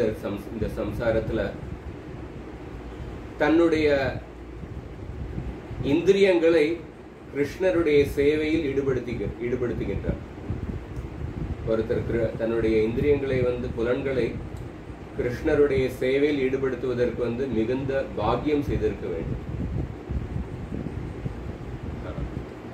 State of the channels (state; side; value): identical; both; correlation 1.00